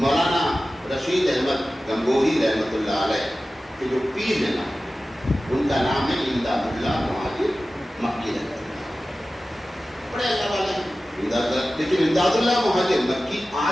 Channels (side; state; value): both; normal; correlation 0.95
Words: رشید احمد گنگوہی رحمۃ اللہ علیہ کے جو پیر ہیں نا, ان کا نام ہے امداد اللہ مہاجر مکی رحمۃ اللہ. بڑے اللہ والے ہیں, لیکن امداد اللہ مہاجر مکی